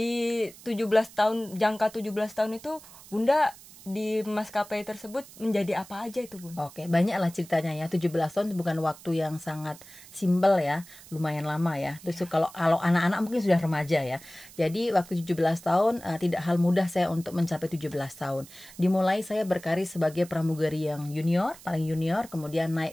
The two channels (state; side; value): noise; right; hiss, 20 dB below the sound